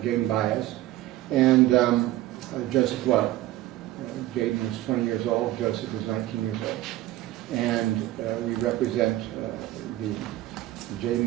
Jaden Baez, and Joseph Lowe. Jaden was 20 years old, Joseph was 19 years old. And we represent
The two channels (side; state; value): left; quieter; 15.6 dB